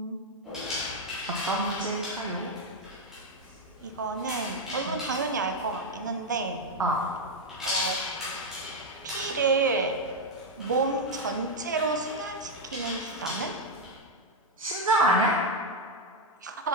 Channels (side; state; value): both; normal; correlation 0.02